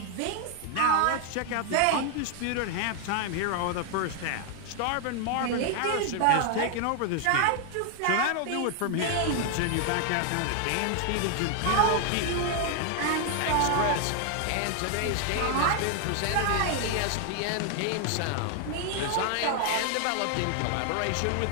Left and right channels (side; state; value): both; different; correlation 0.00